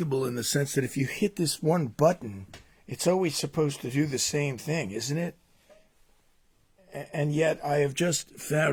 in the sense that if you hit this one button, it's always supposed to do the same thing, isn't it? And yet I have just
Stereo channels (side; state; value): both; identical; correlation 1.00